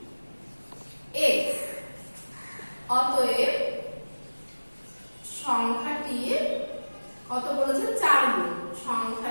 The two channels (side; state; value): both; inverted; correlation -1.00